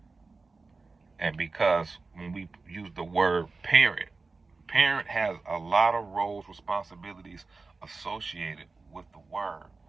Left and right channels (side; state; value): left; quieter; 3.9 dB